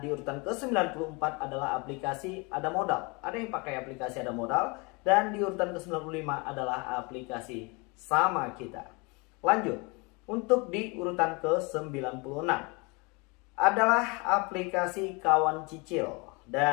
di urutan ke-94 adalah aplikasi Ada Modal. Ada yang pakai aplikasi Ada Modal. Dan di urutan ke-95 adalah aplikasi Sama Kita. Lanjut, untuk di urutan ke-96 adalah aplikasi Kawan Cicil.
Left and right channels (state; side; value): quieter; right; 29.0 dB